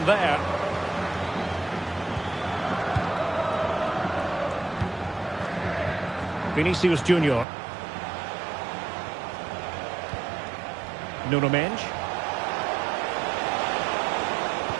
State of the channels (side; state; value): left; drops out; at 7.5 s